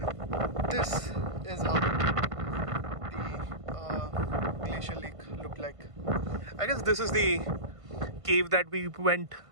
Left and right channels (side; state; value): left; late; 1.5 ms